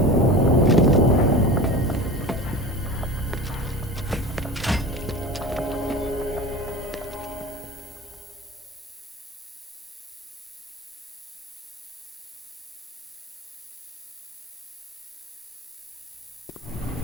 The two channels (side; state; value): both; normal; correlation 0.32